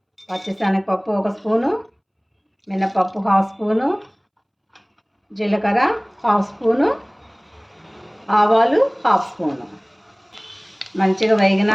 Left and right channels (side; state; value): both; identical; correlation 1.00